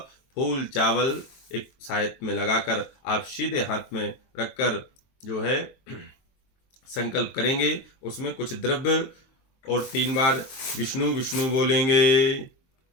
फूल चावल एक सायत में लगाकर आप सीधे हाथ में रखकर जो है संकल्प करेंगे। उसमें कुछ द्रव्य और 3 बार विष्णु विष्णु बोलेंगे।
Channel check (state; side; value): late; right; 23 ms